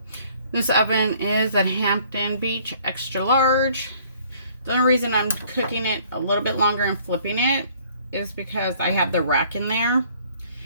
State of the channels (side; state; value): both; inverted; correlation -0.59